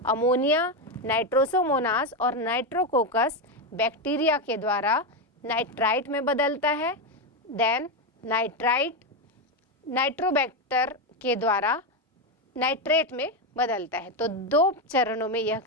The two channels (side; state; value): both; normal; correlation 0.09